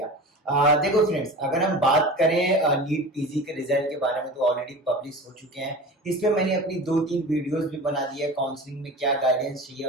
देखो friends, अगर हम बात करें नीट पीजी के रिजल्ट के बारे में तो ऑलरेडी पब्लिश हो चुके हैं। इस पे मैंने अपनी 2-3 वीडियोस भी बना दी है। काउंसलिंग में क्या गाइडेंस चाहिए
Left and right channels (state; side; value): normal; both; correlation 0.34